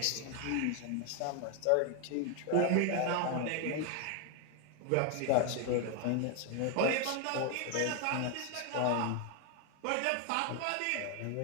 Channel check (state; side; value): different; both; correlation 0.01